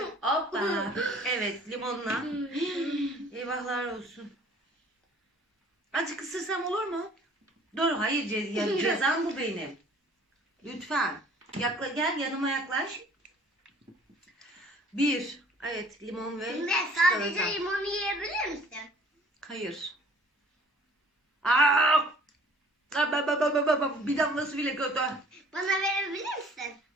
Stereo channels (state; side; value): normal; both; correlation 0.54